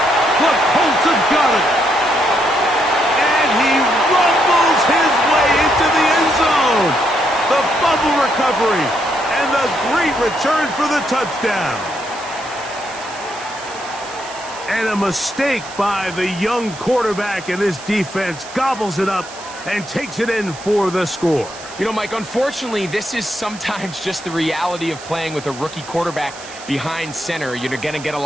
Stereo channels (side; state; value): right; noise; hiss, 16 dB below the sound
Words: The Colts have got it. And he rumbles his way into the end zone. The fumble recovery and the great return for the touchdown. And a mistake by the young quarterback, and this defense gobbles it up and takes it in for the score. You know, Mike, unfortunately, this is sometimes just the reality of playing with a rookie quarterback behind center. You're going to get a